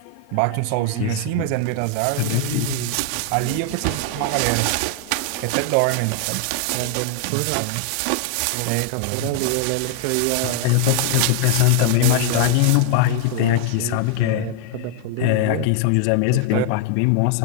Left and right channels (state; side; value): different; both; correlation 0.00